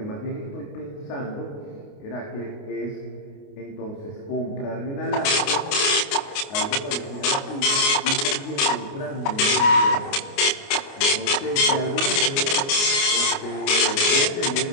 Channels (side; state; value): right; late; 29 ms